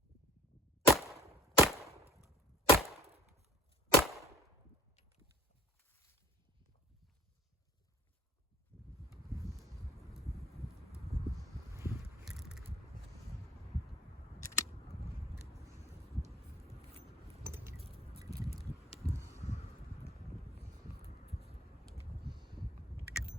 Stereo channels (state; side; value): normal; both; correlation 0.51